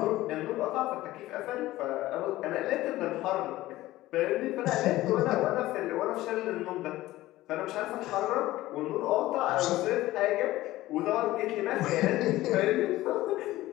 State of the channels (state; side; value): quieter; right; 16.6 dB